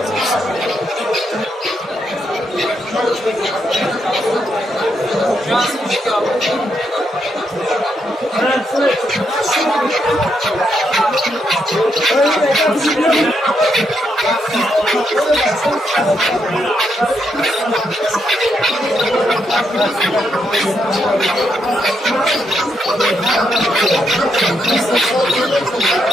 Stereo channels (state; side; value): normal; both; correlation 0.79